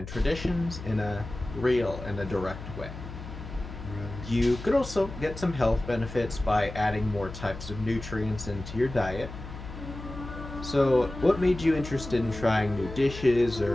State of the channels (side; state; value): left; noise; hum, 11 dB below the sound